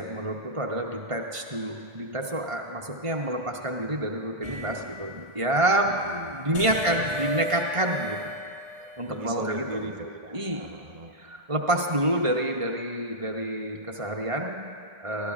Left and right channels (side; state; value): left; late; 1.5 ms